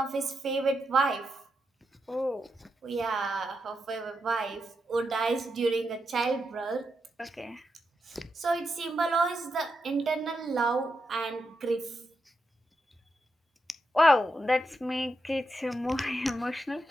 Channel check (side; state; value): both; normal; correlation 0.85